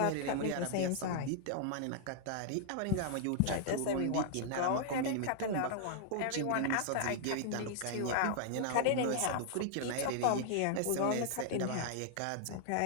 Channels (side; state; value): both; different; correlation -0.01